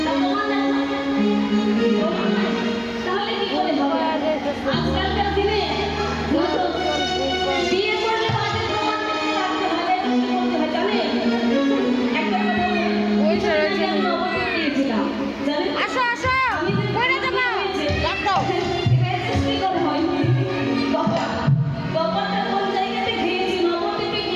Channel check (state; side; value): identical; both; correlation 1.00